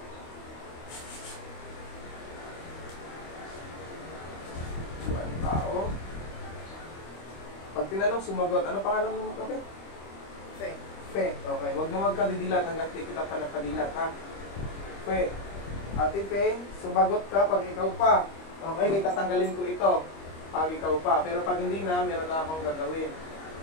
Ang tao. Pag tinanong, sumagot. Ano pangalan mo mo? Okay? Fe. Fe. Okay. Huwag mo magkadidilat hanggang di kita pa nagkadilat, ha? Fe. Ate Fe, sumagot ka pag ikaw pa. Okay, kaya tatanggalin ko ito pag ikaw pa. Pero pag hindi na, meron na akong gagawin.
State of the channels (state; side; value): late; right; 25 ms